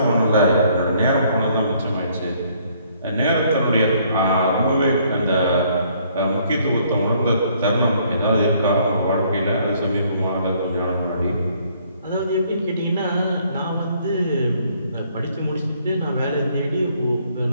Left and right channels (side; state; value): both; inverted; correlation -0.65